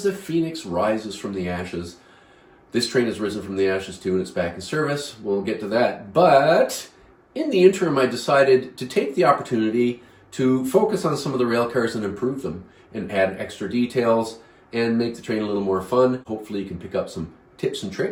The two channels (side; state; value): both; identical; correlation 1.00